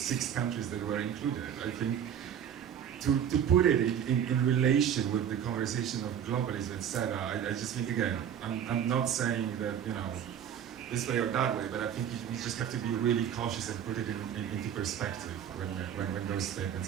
countries that were included. I think to put it in relation with the conversation of globalism, etc., I just think, again, I'm not saying that, you know, this way or that way, but I think we just have to be really cautious and put it into perspective when those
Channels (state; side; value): quieter; left; 9.1 dB